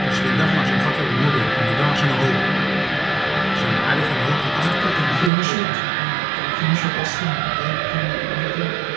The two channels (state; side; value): drops out; left; at 5.3 s